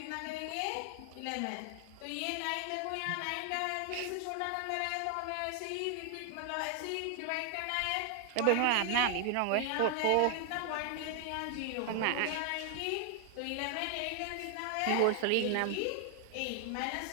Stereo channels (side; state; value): both; different; correlation 0.00